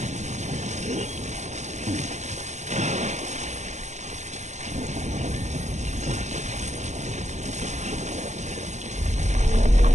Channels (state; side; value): late; left; 0.34 ms